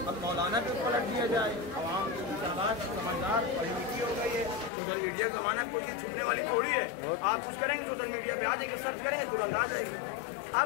अब मौलाना भी पलट दिया जाए। आवाम समझदार पढ़ी लिखी हो गई है, सोशल मीडिया का ज़माना, कोई चीज़ छुपने वाली थोड़ी है। आप कुछ करेंगे सोशल मीडिया पे आ जाएंगे, सर्च करेंगे तुरंत आ जाएगी।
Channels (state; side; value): drops out; right; at 4.7 s